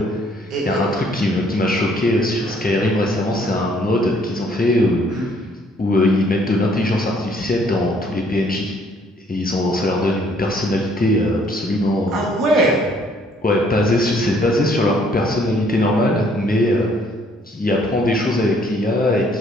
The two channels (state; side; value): normal; both; correlation 0.63